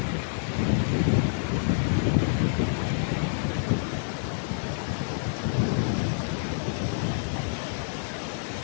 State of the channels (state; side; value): silent; right; digital silence